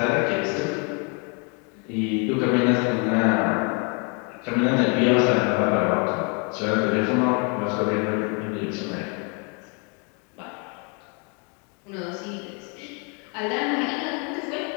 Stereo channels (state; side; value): quieter; right; 35.4 dB